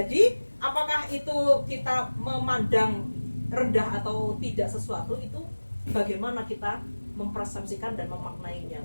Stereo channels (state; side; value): inverted; both; correlation -1.00